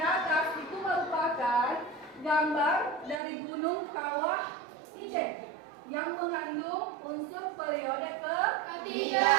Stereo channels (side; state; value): left; drops out; at 3.2 s